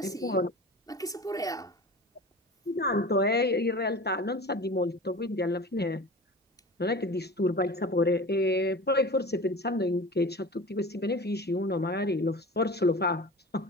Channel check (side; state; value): both; normal; correlation 0.35